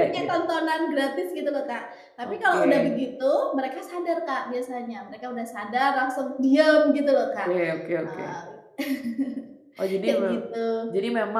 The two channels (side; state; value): both; identical; correlation 1.00